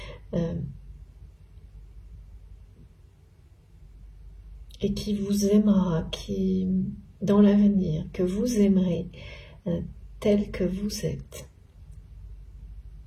et qui vous aimera, qui, dans l'avenir, que vous aimerez tel que vous êtes.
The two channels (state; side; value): identical; both; correlation 1.00